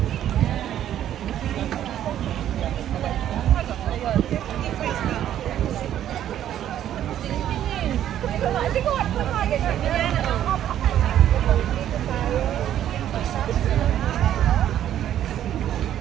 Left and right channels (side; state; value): left; quieter; 11.2 dB